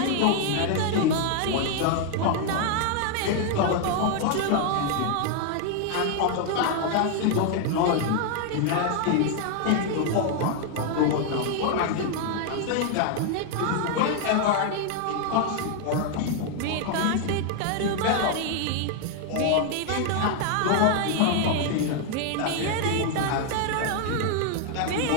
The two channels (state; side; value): different; both; correlation 0.00